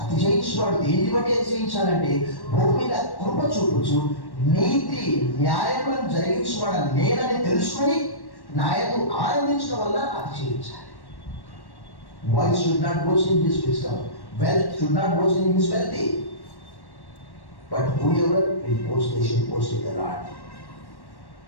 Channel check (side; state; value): right; late; 1.1 ms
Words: అతిశయించేవాడు. దేన్ని బట్టి అతిశయించాలంటే భూమి మీద కృప చూపుచు నీతి న్యాయములను జరిగించేవాడు నేనని తెలుసుకొని నాయకు ఆనందించడం వల్ల అతిశయించాలి. Wise should not boast in his wisdom. Wealth should not boast in his wealthy. But whoever will boast, they should boast in the Lord.